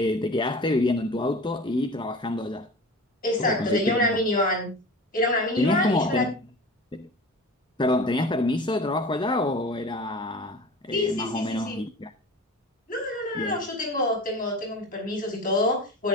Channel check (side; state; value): both; normal; correlation 0.36